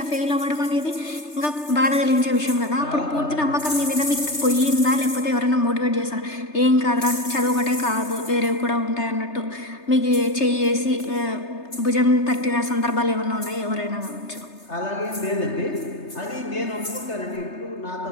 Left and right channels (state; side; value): late; right; 3.3 ms